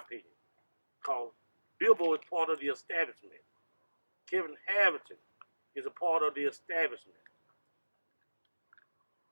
because Billboard is part of the establishment. Kevin Harrington is a part of the establishment.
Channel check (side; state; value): both; inverted; correlation -1.00